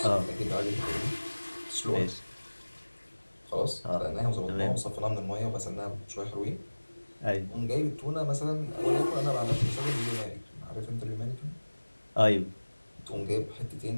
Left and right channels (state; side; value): inverted; both; correlation -1.00